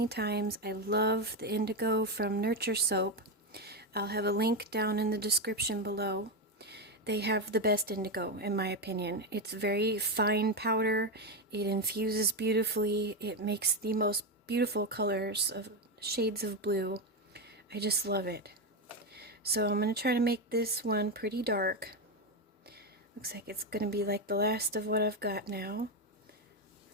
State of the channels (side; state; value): both; normal; correlation 0.10